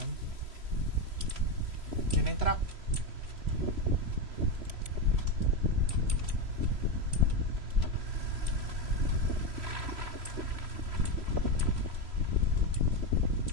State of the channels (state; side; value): late; left; 3.1 ms